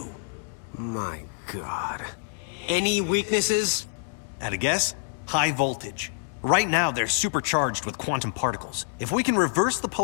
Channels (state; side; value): silent; right; digital silence